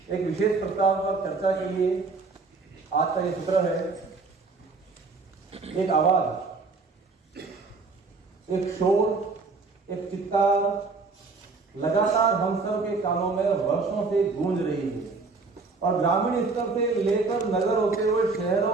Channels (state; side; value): quieter; left; 4.1 dB